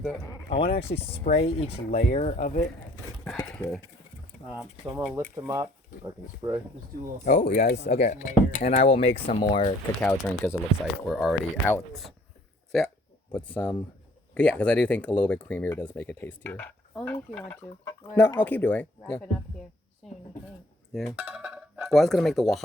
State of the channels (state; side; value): normal; both; correlation 0.59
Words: with that? I want to actually spray each layer of it. Okay. So I'm gonna lift them up. I can spray. Just do a little. Oh, you guys, okay. Layer. And I will make some more cacao drink because it looks like we're already out. So yeah, put some. Yeah, because I do think a little bit creamier does make it tastier. Only if you want to. No, I'll keep doing. Yeah. Wrap it up here soon, I think. Yeah. Well, I was gonna make the